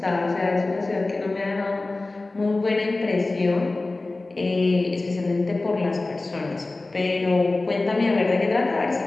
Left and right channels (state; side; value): quieter; right; 3.2 dB